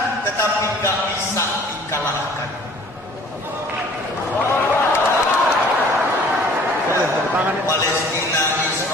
tetapi nggak bisa dikalahkan. Palestina,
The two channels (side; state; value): both; normal; correlation 0.52